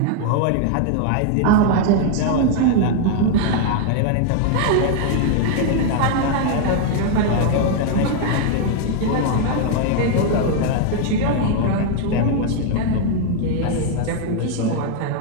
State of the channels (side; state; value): both; different; correlation 0.00